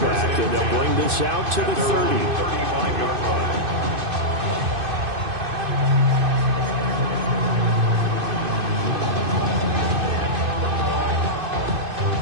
and they'll bring this out to the 30. 35-yard line.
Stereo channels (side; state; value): left; late; 2.5 ms